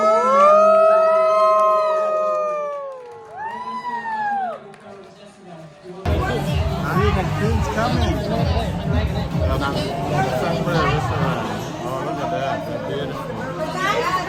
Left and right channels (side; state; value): both; identical; correlation 1.00